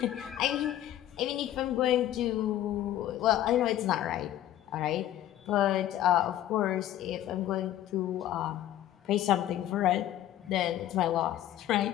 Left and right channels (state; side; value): quieter; right; 12.7 dB